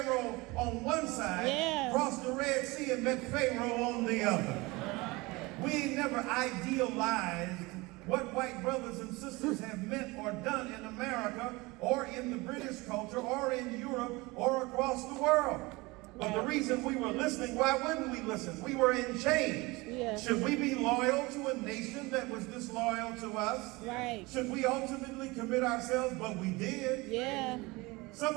on one side, crossed the Red Sea and met Pharaoh on the other. We ain't never idealized what white brothers and sisters have meant or done in America or in the British culture or in Europe or across the world. But the reason we were listening, why wouldn't we listen? We were in chains. Yeah. Should we be loyal to a nation that was disloyal to us? Right. Should we ultimately commit ourselves? But we did. Yeah. Some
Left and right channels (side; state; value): left; quieter; 23.4 dB